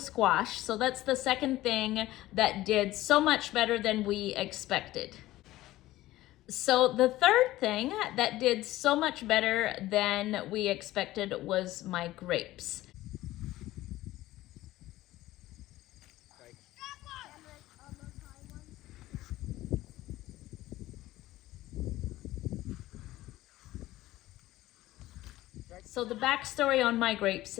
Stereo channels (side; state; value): right; quieter; 16.3 dB